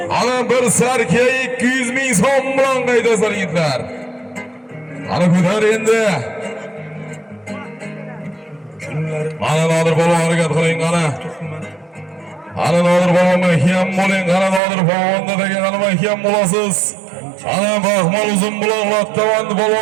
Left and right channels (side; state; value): left; drops out; at 14.6 s